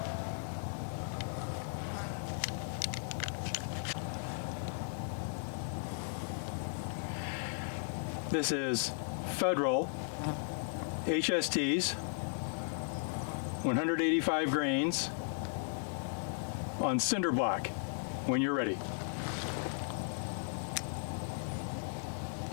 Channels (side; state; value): right; silent; 54 dB below the other